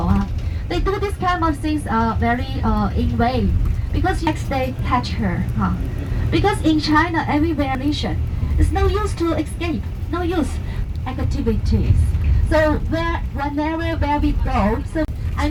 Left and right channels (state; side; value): identical; both; correlation 1.00